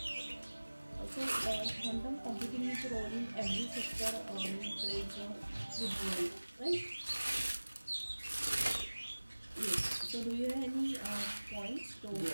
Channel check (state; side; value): inverted; both; correlation -1.00